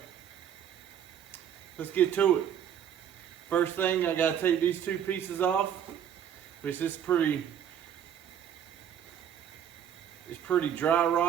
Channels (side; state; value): left; quieter; 9.2 dB